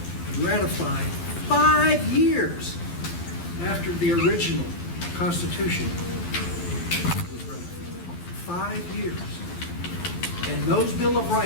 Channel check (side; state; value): right; late; 12 ms